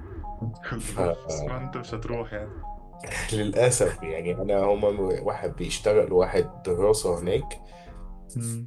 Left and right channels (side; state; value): both; identical; correlation 1.00